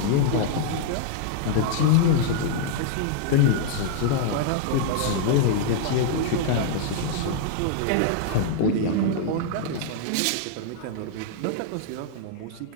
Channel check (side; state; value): both; different; correlation 0.00